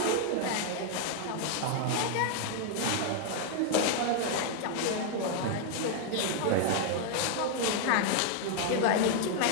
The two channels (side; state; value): both; different; correlation 0.00